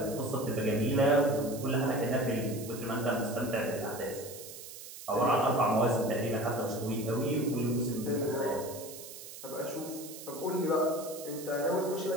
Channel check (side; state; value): right; noise; hiss, 13 dB below the sound